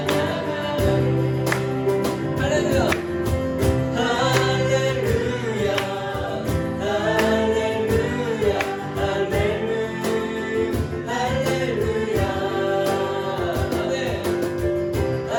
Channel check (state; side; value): identical; both; correlation 1.00